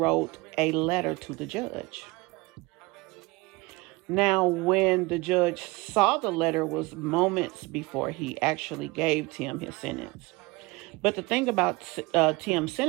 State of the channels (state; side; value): quieter; left; 23.6 dB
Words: a letter to the judge. Now, when the judge saw the letter was moments before he actually gave Tim his sentence. But the thing about Tim's